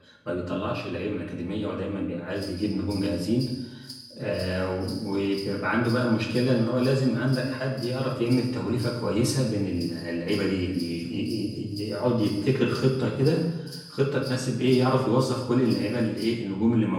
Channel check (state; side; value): identical; both; correlation 1.00